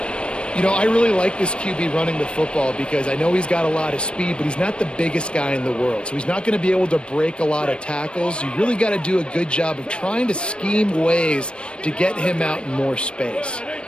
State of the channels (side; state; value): right; late; 0.057 ms